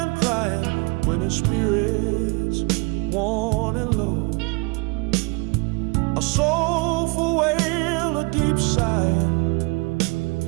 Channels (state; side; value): quieter; left; 29.7 dB